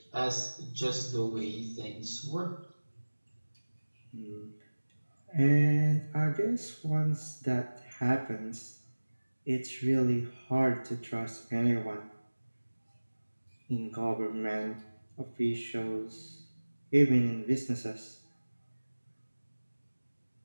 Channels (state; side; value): inverted; both; correlation -1.00